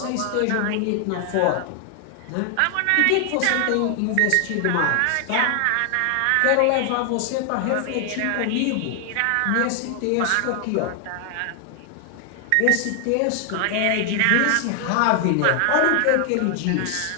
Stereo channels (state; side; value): different; both; correlation 0.00